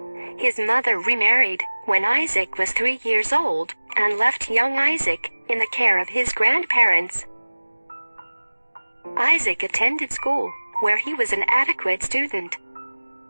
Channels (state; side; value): inverted; both; correlation -1.00